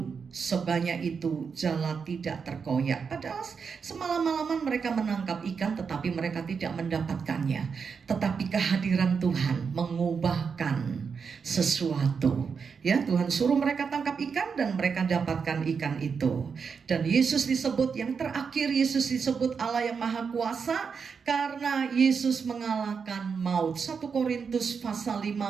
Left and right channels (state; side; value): quieter; left; 5.9 dB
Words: sebanyak itu jala tidak terkoyak. Padahal semalam-malaman mereka menangkap ikan tetapi mereka tidak mendapatkannya. Tetapi kehadiran Tuhan mengubahkan sesuatu. Ya, Tuhan suruh mereka tangkap ikan dan mereka dapatkan ikan itu. Dan Yesus disebut yang terakhir, Yesus disebut Allah yang Maha Kuasa karena Yesus mengalahkan maut. 1 Korintus pasal